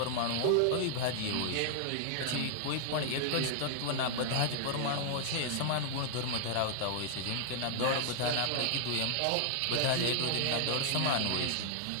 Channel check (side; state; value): both; different; correlation 0.00